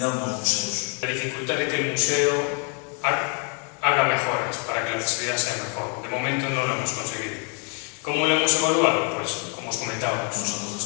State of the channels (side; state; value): right; quieter; 38.6 dB